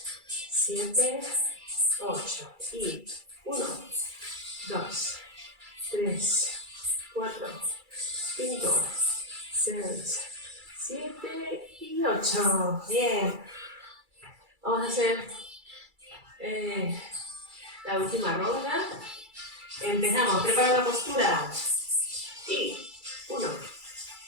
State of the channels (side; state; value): left; late; 2.3 ms